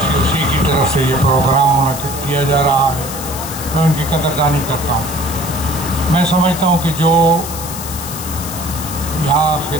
کی طرف سے یہ پروگرام منعقد کیا جا رہا ہے، میں ان کی قدردانی کرتا ہوں۔ میں سمجھتا ہوں کہ جو یہاں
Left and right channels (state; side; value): noise; left; hiss, 9 dB below the sound